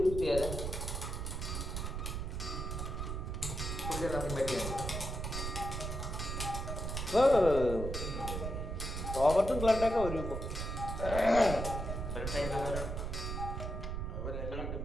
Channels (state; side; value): noise; right; rumble, 4 dB below the sound